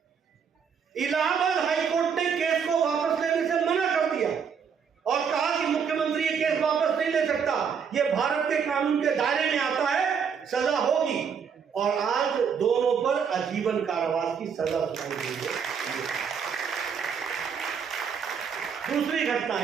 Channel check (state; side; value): quieter; left; 6.8 dB